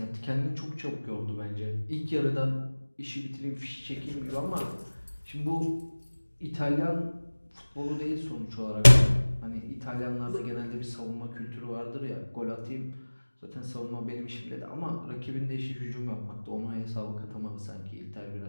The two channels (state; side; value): inverted; both; correlation -1.00